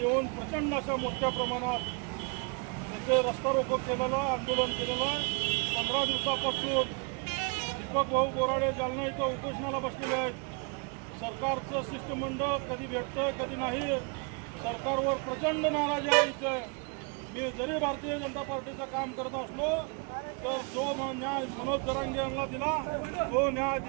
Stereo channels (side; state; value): left; quieter; 33.7 dB